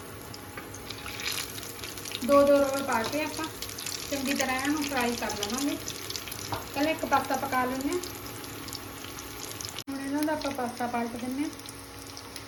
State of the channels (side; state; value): both; identical; correlation 1.00